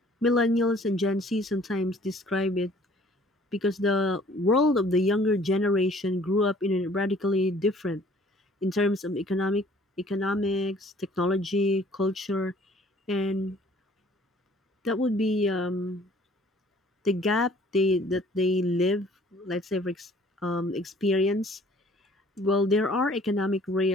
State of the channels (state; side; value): normal; both; correlation 0.55